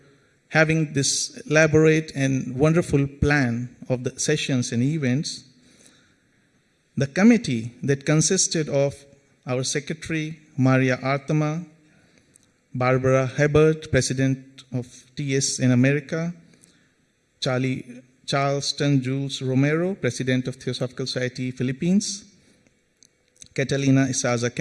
having this elaborate and wonderful plan of the sessions and events. The committee that consisted of our Secretary, Maria Artema, Barbara Hebert, President of TS in America, Charleston Jules Romero, President of Theosophical Society Philippines, Catalina Isaza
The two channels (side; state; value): both; identical; correlation 1.00